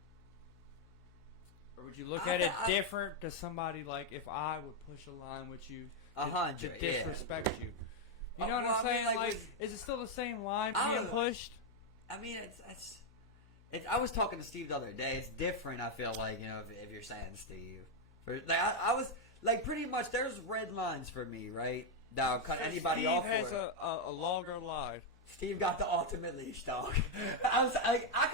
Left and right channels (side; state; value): left; noise; hum, 25 dB below the sound